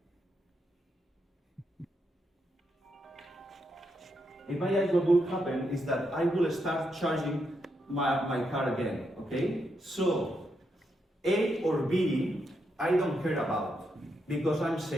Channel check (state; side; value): normal; both; correlation 0.81